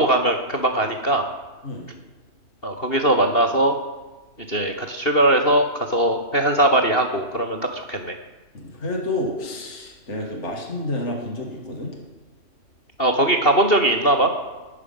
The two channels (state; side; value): late; right; 2.7 ms